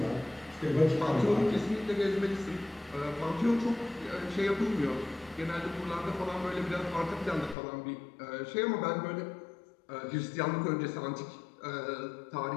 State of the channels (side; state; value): right; drops out; at 7.6 s